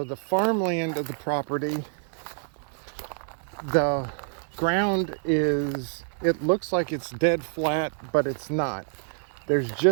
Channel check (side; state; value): left; silent; 60 dB below the other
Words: the farmland of the property, the ground is, it looks like it's dead flat, but it's not. There's